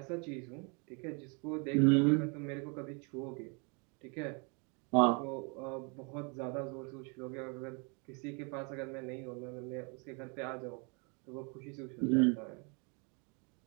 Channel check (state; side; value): quieter; left; 33.6 dB